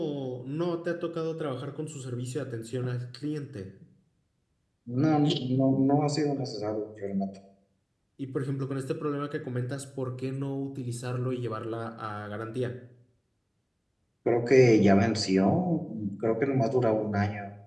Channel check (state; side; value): identical; both; correlation 1.00